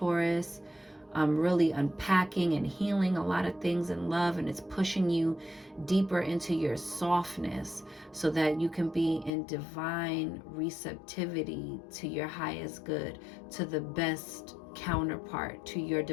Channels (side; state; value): right; drops out; at 9.3 s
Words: Really unpacking and healing a lot of things in love, and it's pushing you deeper into your softness so that you can be in divine receptivity to your highest good, to the best counterpart, to your